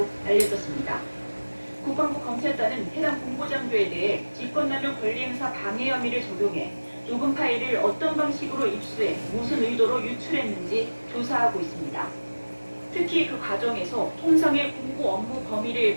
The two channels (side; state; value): both; inverted; correlation -1.00